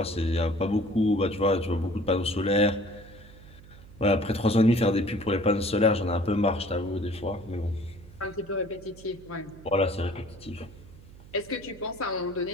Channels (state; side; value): noise; right; hum, 20 dB below the sound